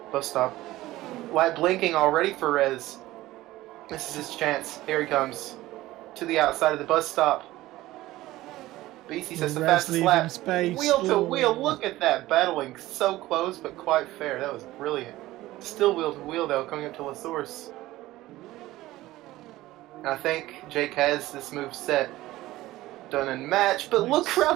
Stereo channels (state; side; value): quieter; left; 16.9 dB